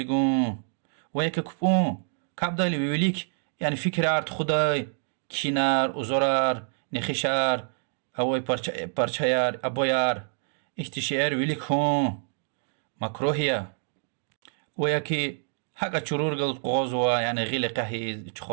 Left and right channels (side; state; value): left; silent; digital silence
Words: وياكي كبون كابدالي ويوليك يعني فكرات خداي كينار وزرار نخشار اوي پارچayar ابويار احتشار ويليك هون مكروهية وياكي حقا چرور قلت قوزوا يعني غيل قهي